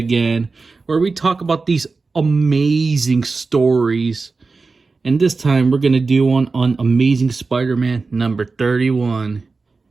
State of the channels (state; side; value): quieter; left; 4.1 dB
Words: where we talk about these amazing stories. And this time we're going to do one on Amazing Spider-Man number 31.